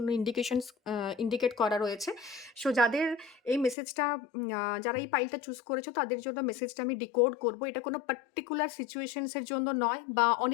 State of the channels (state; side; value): drops out; right; at 3.8 s